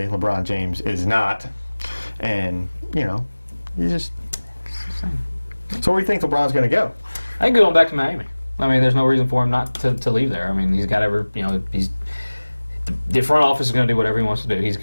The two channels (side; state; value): both; inverted; correlation -1.00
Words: LeBron James is not. And, you just... So where do you think LeBron's going to go? I think going back to Miami. I mean, there's no reason for him not to leave there. I mean, he's got the front office is going to do whatever he wants to do.